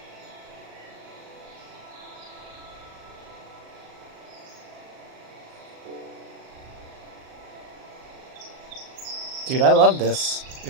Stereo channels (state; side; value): late; left; 38 ms